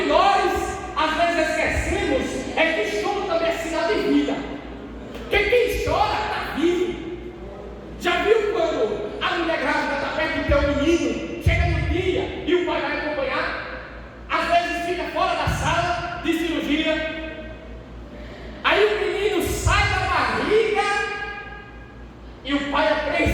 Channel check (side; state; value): both; identical; correlation 1.00